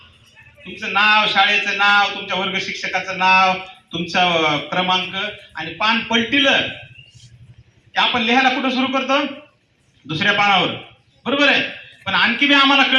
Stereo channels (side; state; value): both; identical; correlation 1.00